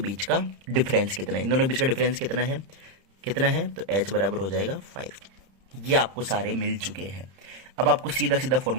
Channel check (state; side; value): late; left; 31 ms